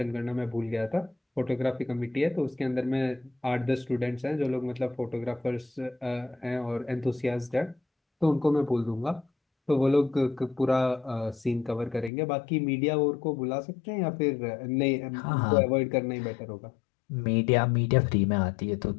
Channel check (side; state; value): right; drops out; at 12.1 s